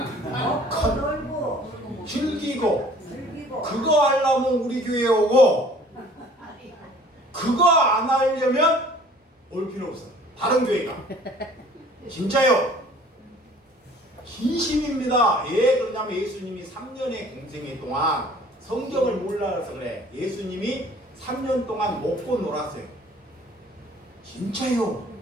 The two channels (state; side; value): normal; both; correlation 0.52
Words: 놀고 즐기고 즐기고 그거 하려면 우리 교회에 오고 그거 안 하려면 올 필요 없어. 다른 교회가. 진짜요. 진심입니다. 왜 그러냐면 예수님이 3년의 공생애 동안 성경을 몰라서 그래. 예수님이 3년 동안 먹고 놀았어요. 진짜요.